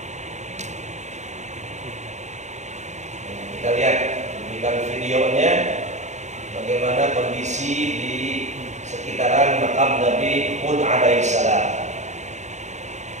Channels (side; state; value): left; late; 0.34 ms